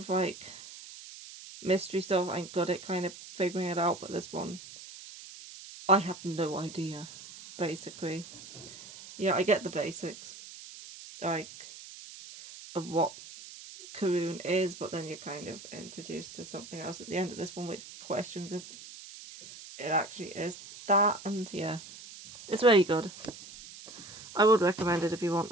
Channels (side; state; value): right; noise; hiss, 15 dB below the sound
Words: like mystery stuff, I'm good at kind of figuring it out, but this one, I have no idea, basically. Yeah, I get the basics, like, of what Karun is, but then you're kind of introduced to something else at the end of this one, which questions if it actually is that, and yeah, it's very good. I would recommend it if you